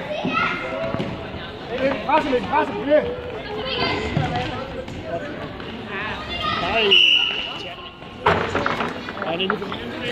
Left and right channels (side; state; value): both; identical; correlation 1.00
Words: Presse, bliv ved. Nej. Nej, det er lige for